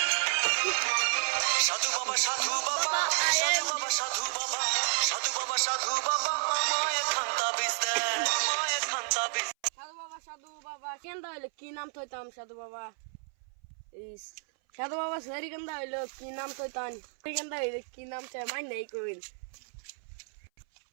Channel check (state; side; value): silent; left; 57 dB below the other